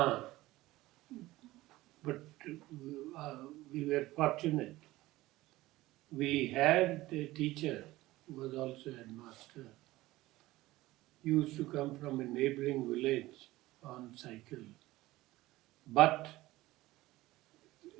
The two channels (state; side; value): quieter; left; 17.8 dB